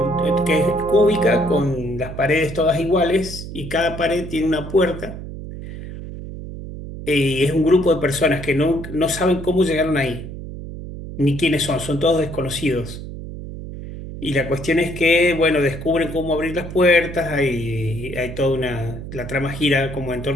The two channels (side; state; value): right; noise; hum, 10 dB below the sound